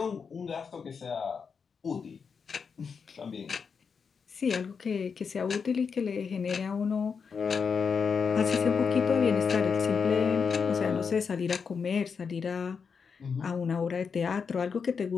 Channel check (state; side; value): quieter; right; 5.9 dB